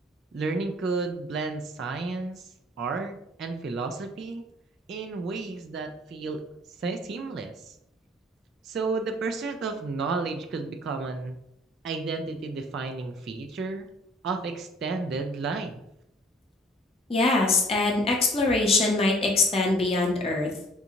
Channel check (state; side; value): normal; both; correlation 0.54